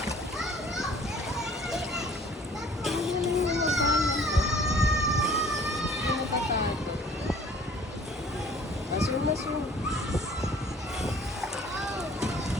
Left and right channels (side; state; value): both; normal; correlation 0.53